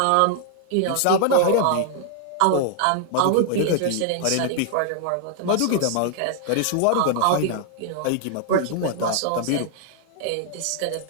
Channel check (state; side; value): different; both; correlation 0.00